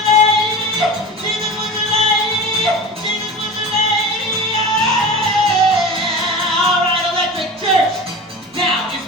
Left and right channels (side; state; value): both; normal; correlation 0.32